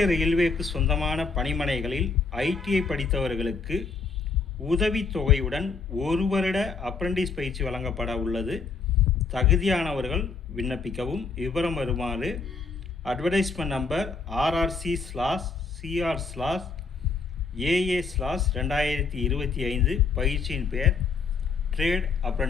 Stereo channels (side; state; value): right; quieter; 4.7 dB